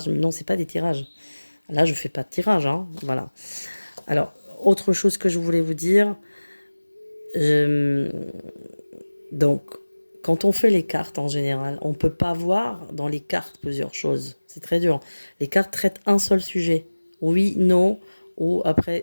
mais non, c'est pas des tirages. Là, je fais pas de tirage, hein. Voilà. Alors, autre chose que je voulais vous dire, euh, donc quand on fait les cartes en général, on peut pas voir dans les cartes plusieurs choses. C'est très dur. Les cartes traitent un seul sujet. Oui, non, ou après,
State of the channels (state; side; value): inverted; both; correlation -1.00